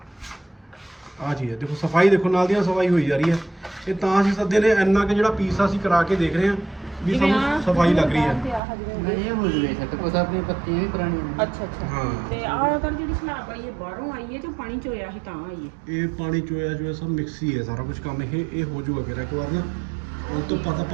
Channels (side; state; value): left; drops out; at 8.6 s